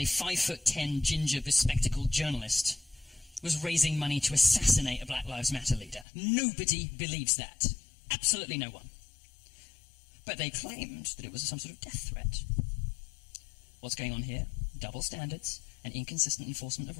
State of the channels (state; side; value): drops out; right; at 6.1 s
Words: 5'10" ginger bespectacled journalist was raising money to assassinate a Black Lives Matter leader. Nobody believes that. Absolutely no one. But they claimed that it was some sort of death threat. What's going on here? Double standards and inconsistent enforcement of